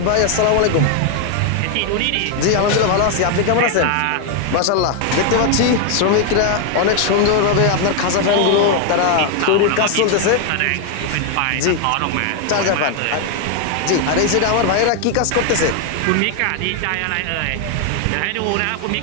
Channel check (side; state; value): both; different; correlation 0.01